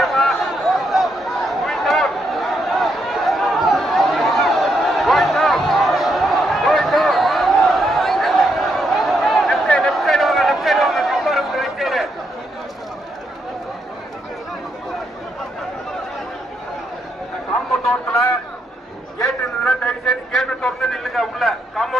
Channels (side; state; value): both; normal; correlation 0.78